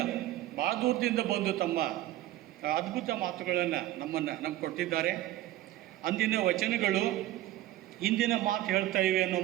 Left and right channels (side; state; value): left; quieter; 14.9 dB